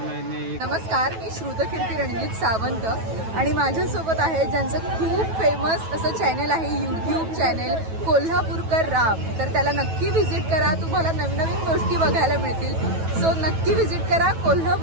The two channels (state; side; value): late; left; 9.2 ms